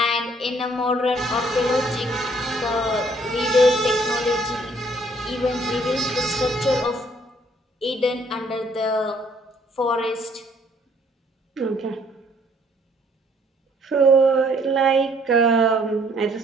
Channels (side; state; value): both; normal; correlation 0.63